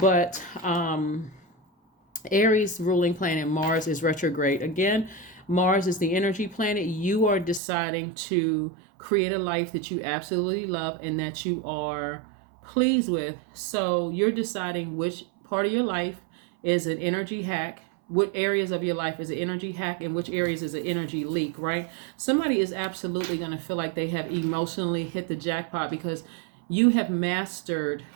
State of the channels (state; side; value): drops out; left; at 7.6 s